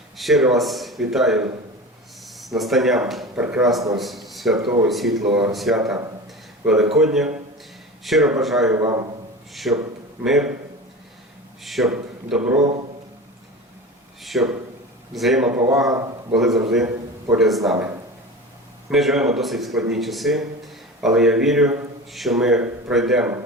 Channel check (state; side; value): normal; both; correlation 0.31